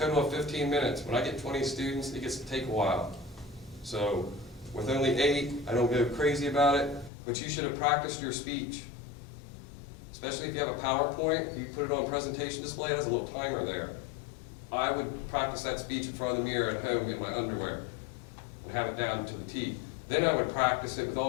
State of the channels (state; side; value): drops out; right; at 7.1 s